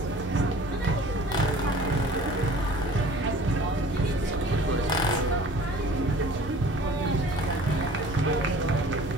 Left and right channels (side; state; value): both; normal; correlation 0.47